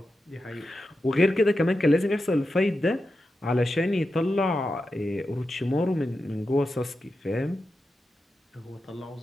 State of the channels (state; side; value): normal; both; correlation 0.90